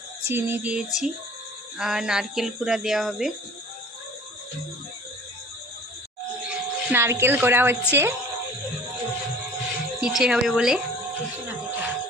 চিনি দিয়েছি আর নারকেল কুড়া দেওয়া হবে। নারকেল কোড়া হচ্ছে পিঠে হবে বলে।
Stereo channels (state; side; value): normal; both; correlation 0.46